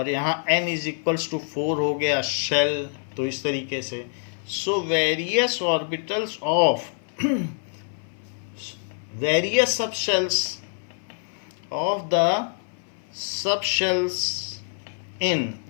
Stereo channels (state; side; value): silent; right; 58 dB below the other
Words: यहाँ n इज इक्वल्स टू 4 हो गया शेल। तो इस तरीके से So various orbitals of various subshells of the subshells in